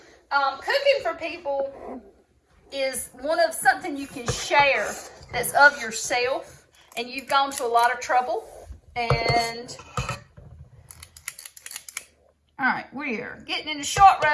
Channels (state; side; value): identical; both; correlation 1.00